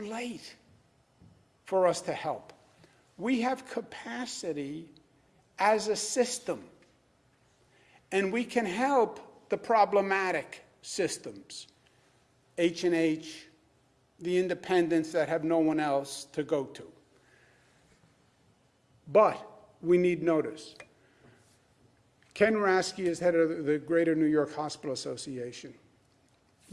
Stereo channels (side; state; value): both; identical; correlation 1.00